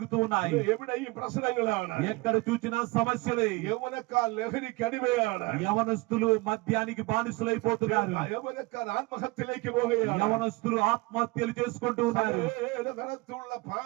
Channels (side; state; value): left; quieter; 23.7 dB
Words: ఉన్నాయి. എവിടെയും പ്രശ്നങ്ങളാണ്. ఎక్కడ చూసినా సమస్యలే. യൗവനക്കാർ ലഹരിക്ക് അടിമയാണ്. యవనస్తులు మద్యానికి బానిసలైపోతున్నారు. യൗവനക്കാർ ആത്മഹത്യയിലേക്ക് പോവുകയാണ്. యవనస్తులు ఆత్మహత్యలు చేసుకుంటూ ఉన్నారు. തരത്തിലുള്ള